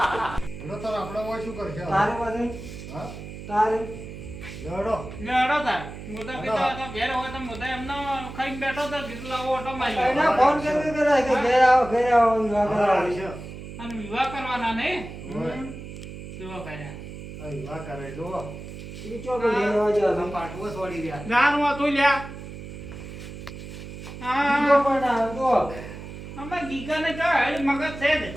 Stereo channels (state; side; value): noise; right; hum, 11 dB below the sound